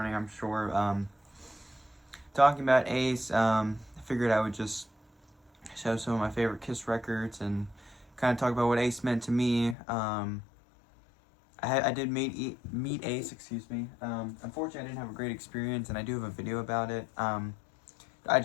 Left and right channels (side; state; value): right; drops out; at 9.8 s